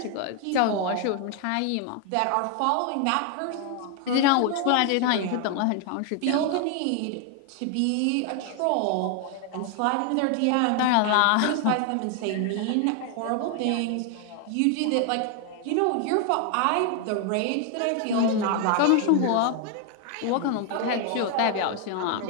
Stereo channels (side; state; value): both; different; correlation 0.00